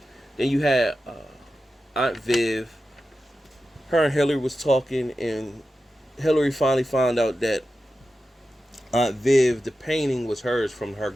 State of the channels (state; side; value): normal; both; correlation 0.92